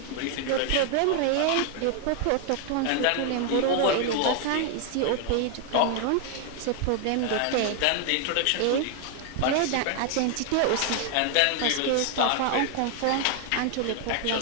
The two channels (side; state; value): both; different; correlation 0.00